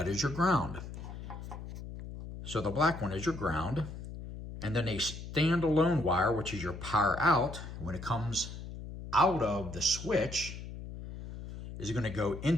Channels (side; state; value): left; noise; hum, 10 dB below the sound